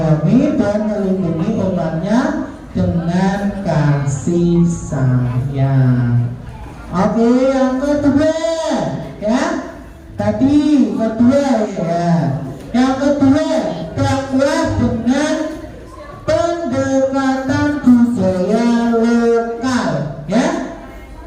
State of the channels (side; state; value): both; identical; correlation 1.00